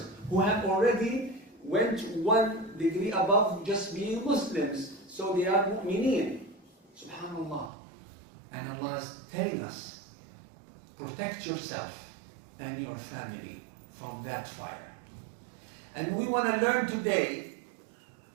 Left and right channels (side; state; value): left; drops out; at 7.7 s